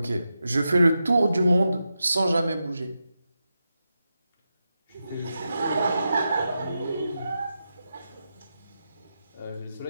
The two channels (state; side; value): inverted; both; correlation -0.89